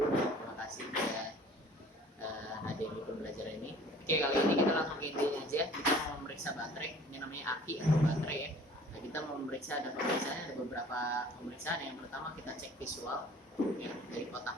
kasih sudah hadir di pembelajaran ini. Oke, kali ini kita langsung ke intinya aja. Kita mau memeriksa baterai, ini namanya aki atau baterai ya. Nah, kita mau memeriksa, ada beberapa pemeriksaan. Yang pertama kita cek visual ya, dari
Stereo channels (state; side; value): normal; both; correlation 0.49